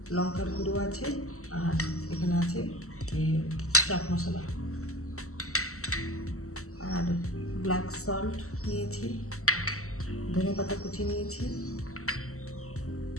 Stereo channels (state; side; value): late; right; 0.64 ms